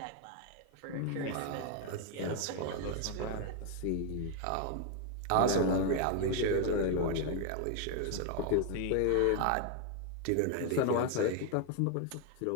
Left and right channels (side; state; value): both; different; correlation 0.01